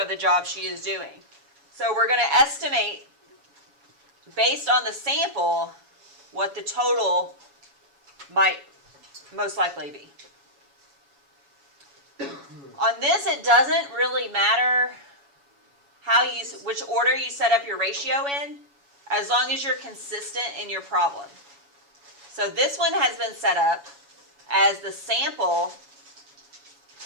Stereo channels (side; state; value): left; late; 7.1 ms